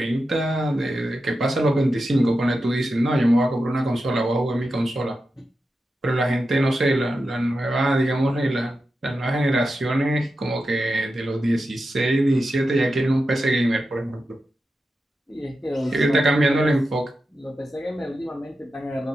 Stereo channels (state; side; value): normal; both; correlation 0.90